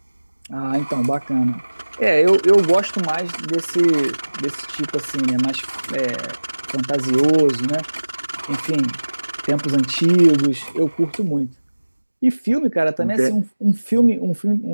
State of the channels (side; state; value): both; inverted; correlation -1.00